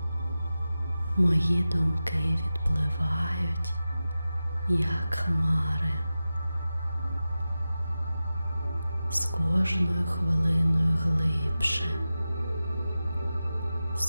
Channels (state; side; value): inverted; both; correlation -0.94